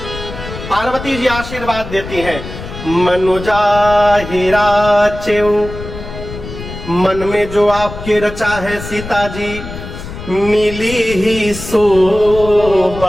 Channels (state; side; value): noise; left; rumble, 11 dB below the sound